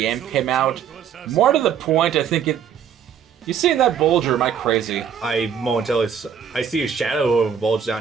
came out. More to the point, I think it... You see that bulge, or am I crazy? I see a shadow of a bulge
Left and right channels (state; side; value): quieter; left; 7.9 dB